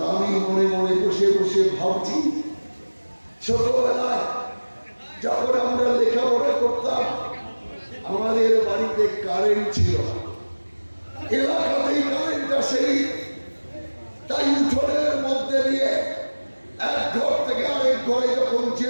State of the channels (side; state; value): both; inverted; correlation -1.00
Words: আমি মনে মনে বসে বসে ভাবছি, ছোটবেলায় যখন আমরা লেখাপড়া করতাম, আমাদের বাড়িতে কারেন্ট ছিল, এলাকাতেই কারেন্ট আসেনি। তাই উঠোনের মধ্যে দিয়ে এক ঘর থেকে আরেক ঘরে যখন